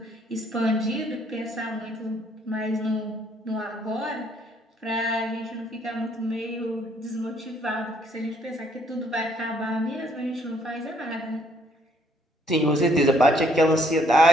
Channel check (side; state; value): both; normal; correlation 0.66